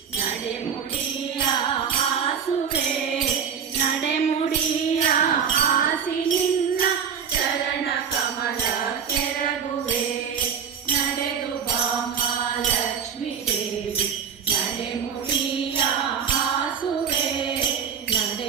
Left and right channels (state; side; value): quieter; left; 7.3 dB